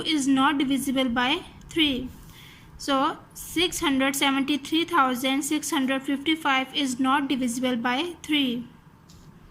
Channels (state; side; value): identical; both; correlation 1.00